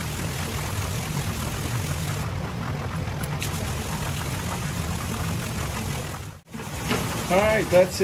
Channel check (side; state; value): both; identical; correlation 1.00